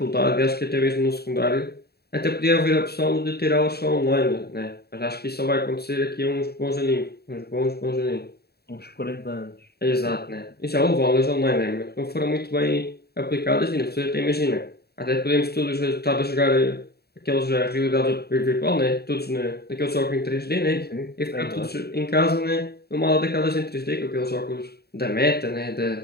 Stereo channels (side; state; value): right; late; 0.46 ms